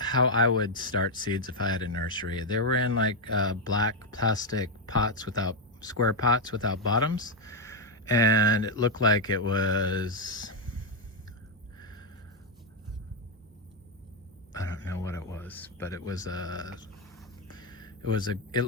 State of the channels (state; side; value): normal; both; correlation 0.02